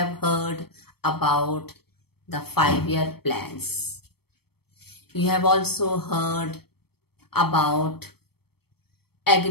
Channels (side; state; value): right; late; 0.96 ms